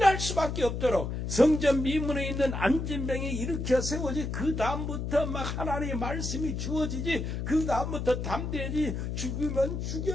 수밖에 없도록 성전 미문에 있는 안진병이 일으켜 세워지, 그 다음부터 막 하나님의 말씀이 주어지지, 그 다음부터 담대해지, 죽으면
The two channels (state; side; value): noise; left; hum, 3 dB below the sound